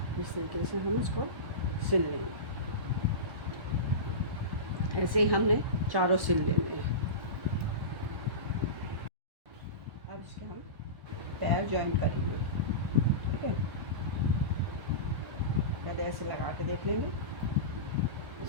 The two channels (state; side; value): late; left; 1.3 ms